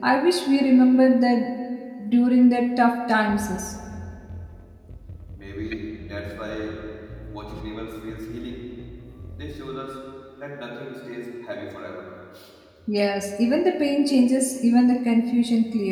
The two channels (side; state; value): both; identical; correlation 1.00